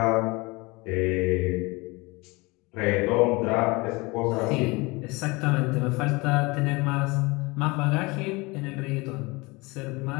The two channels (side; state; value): right; quieter; 24.6 dB